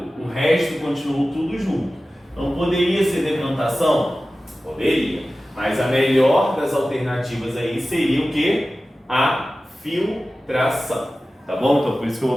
o resto continuou tudo junto. Então poderia ser decantação? Poderia. Mas a melhor das alternativas aí seria o quê? A filtração, tá bom? Então por isso que eu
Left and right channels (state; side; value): normal; both; correlation 0.95